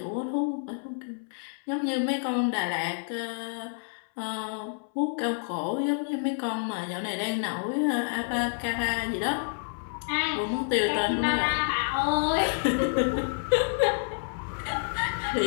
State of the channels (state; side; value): silent; right; 59 dB below the other